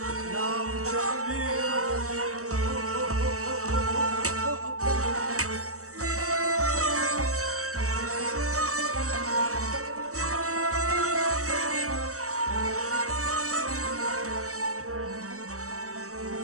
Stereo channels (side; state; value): left; late; 0.65 ms